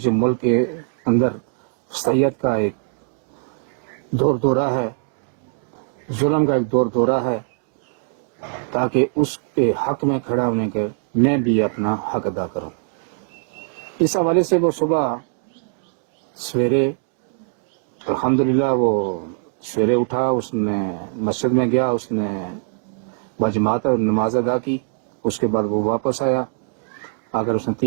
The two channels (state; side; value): silent; left; digital silence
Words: ملک کے اندر فسیت کا ایک دورہ ہے، ظلم کا ایک دورہ ہے، تاکہ اس کے حق میں کھڑا ہونے کے میں بھی اپنا حق ادا کروں. اس حوالے سے وہ صبح سویرے الحمدللہ وہ سویرے اٹھا، اس نے مسجد میں گیا، اس نے بجماعت نماز ادا کی. اس کے بعد وہ واپس آیا، اگر اس نے